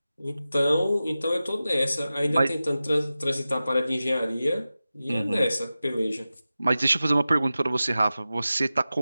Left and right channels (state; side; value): inverted; both; correlation -0.94